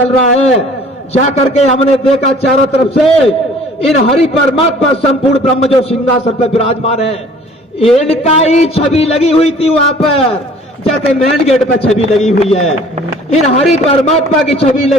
रहा है। जाकर के हमने देखा चारों तरफ से इन हरि परमात्मा संपूर्ण ब्रह्म जो सिंहासन पर विराजमान है, इनका ही छवि लगी हुई थी वहां पर, जैसे मेन गेट पर छवि लगी हुई है, इन हरि परमात्मा की छवि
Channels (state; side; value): normal; both; correlation 0.52